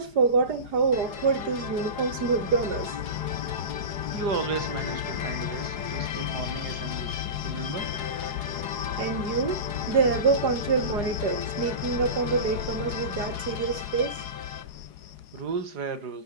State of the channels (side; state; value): left; late; 4.9 ms